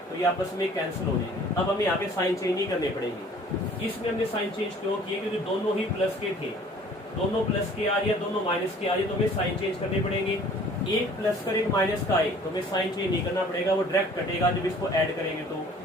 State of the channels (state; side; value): normal; both; correlation 0.52